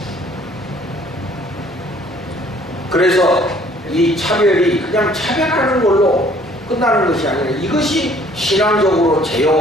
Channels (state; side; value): normal; both; correlation 0.58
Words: 그래서 이 차별이 그냥 차별하는 걸로 끝나는 것이 아니라 이것이 신앙적으로